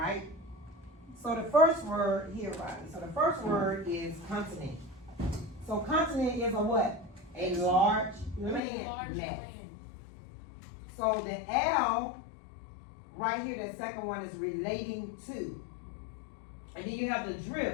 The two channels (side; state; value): right; drops out; at 8.6 s